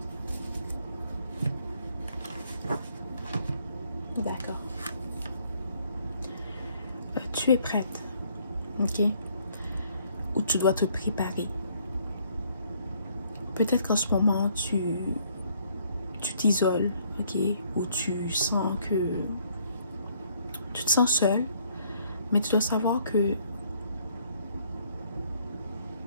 D'accord. Tu es prête, ok? Ou tu dois te préparer. Peut-être qu'en ce moment, tu t'isoles, ok? Ou tu sens que tu te sens seul, mais tu dois savoir que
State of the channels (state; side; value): inverted; both; correlation -0.65